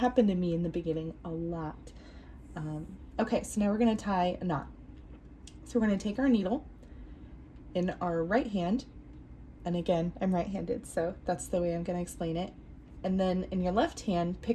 to me in the beginning a lot. Okay, so now we're going to tie a knot. So we're going to take our needle in our right hand, and again, I'm right-handed, so that's the way I'm going to explain it. And then in your left hand,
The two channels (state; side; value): identical; both; correlation 1.00